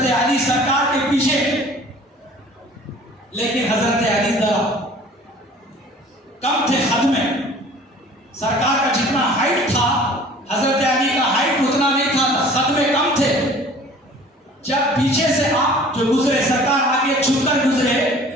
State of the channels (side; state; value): both; normal; correlation 0.48